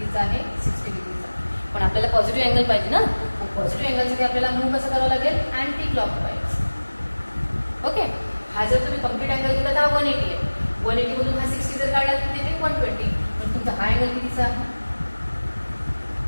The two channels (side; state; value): both; inverted; correlation -1.00